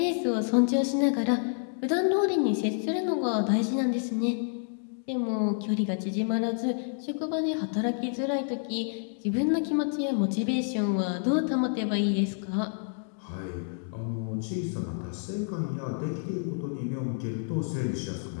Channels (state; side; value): silent; right; digital silence